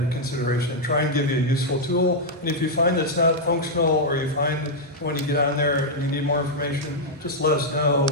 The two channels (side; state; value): both; normal; correlation -0.04